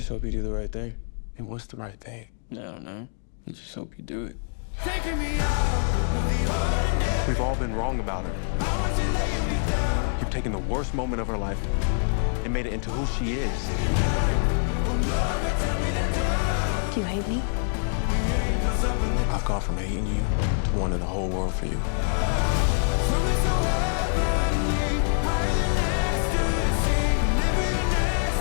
hope you do the right thing. And what's the right thing? I don't know. I just hope you do it. Taking me out of the ordinary. We've all been wrong about her. I want you laying me down. You've taken the worst moment of her life and made it into who she is. Do you hate me? I've gone from hating you to wanting the whole world for you.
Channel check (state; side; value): silent; right; 61 dB below the other